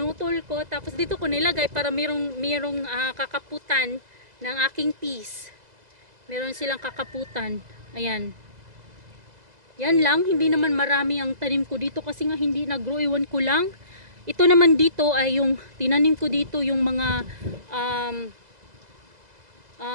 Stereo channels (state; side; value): late; left; 2.0 ms